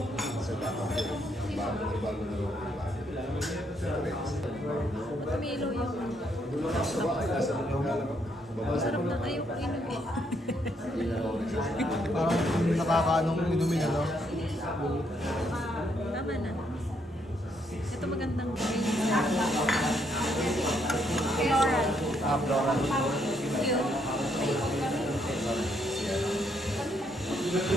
Pamilo yung... Masarap na kayo inumin. Parang nakakaanong inumin, ano? Tama na. Ito magandang green. Floral. Floral. Cute.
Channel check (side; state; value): both; normal; correlation 0.73